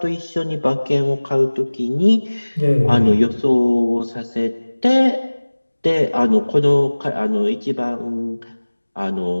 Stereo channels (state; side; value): inverted; both; correlation -1.00